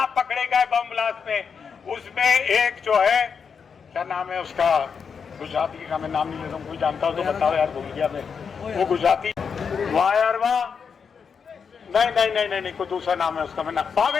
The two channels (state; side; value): quieter; right; 6.2 dB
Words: पकड़े गए बम ब्लास्ट में। उसमें एक जो है, क्या नाम है उसका, गुजराती का मैं नाम नहीं ले रहा हूँ, कोई जानता हो तो बताओ यार, भूल गया मैं। वो गुजराती, वाह यार वाह, नहीं कोई दूसरा नाम है उसका, मैं नाम,